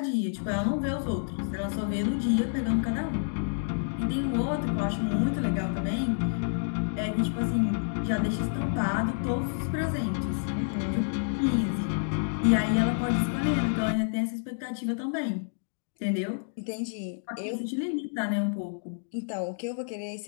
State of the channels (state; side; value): silent; right; digital silence